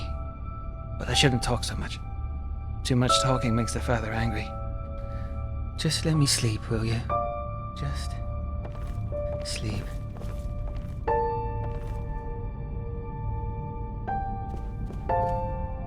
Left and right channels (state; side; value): identical; both; correlation 1.00